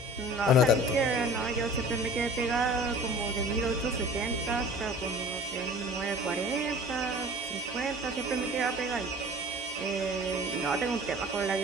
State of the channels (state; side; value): normal; both; correlation 0.44